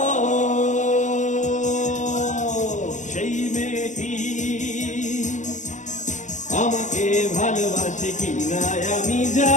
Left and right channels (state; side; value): late; right; 0.35 ms